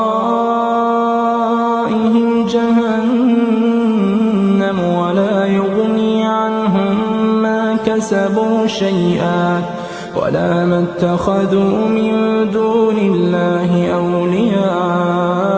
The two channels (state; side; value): identical; both; correlation 1.00